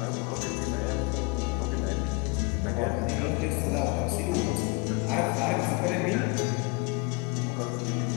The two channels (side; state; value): right; quieter; 28.3 dB